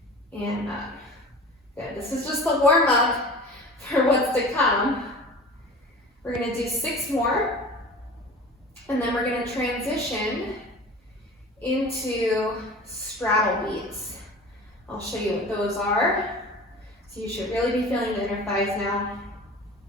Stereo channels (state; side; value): normal; both; correlation 0.39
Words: and up. Good, this is just the warm up for what's to come. We're gonna do 6 more, and then we're gonna transition into straddle beats. I'll show you what those are. So you should really be feeling the inner thighs now.